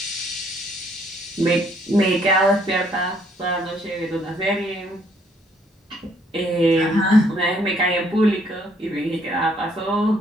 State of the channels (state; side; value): normal; both; correlation 0.67